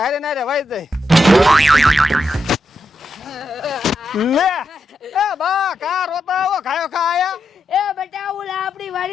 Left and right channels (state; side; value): normal; both; correlation 0.84